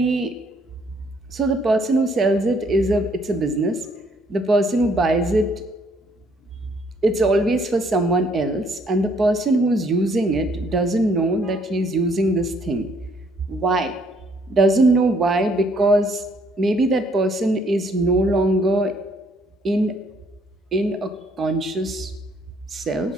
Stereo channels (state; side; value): normal; both; correlation 0.65